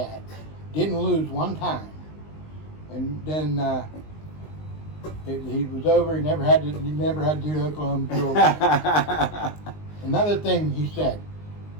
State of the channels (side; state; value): right; late; 19 ms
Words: Didn't lose one time. And then he was over. He never had to do the Oklahoma drill. Another thing he said,